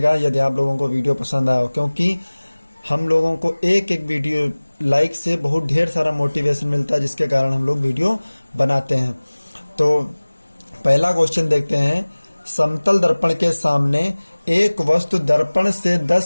यदि आप लोगों को वीडियो पसंद आया हो, क्योंकि हम लोगों को एक वीडियो लाइक से बहुत ढेर सारा मोटिवेशन मिलता है, जिसके कारण हम लोग वीडियो बनाते हैं। तो पहला क्वेश्चन देखते हैं। समतल दर्पण के सामने एक वस्तु दर्पण से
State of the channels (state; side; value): inverted; both; correlation -1.00